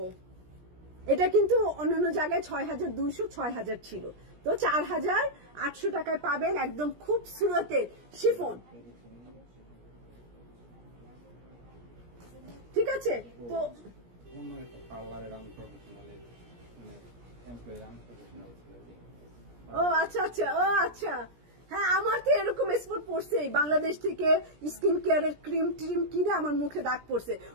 এটা কিন্তু অন্যান্য জায়গায় 6200 6000 ছিল, তো 4800 টাকায় পাবেন একদম খুবসুরতের শিফন। ঠিক আছে, তো ও আচ্ছা আচ্ছা, ও আচ্ছা, হ্যাঁ আমার তো এরকম স্পট পড়ছে, বাংলাদেশ থেকে স্কিন কেয়ারের ক্রিম ট্রিম কিনে আমার মুখে দাগ পড়ছে।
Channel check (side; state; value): left; late; 17 ms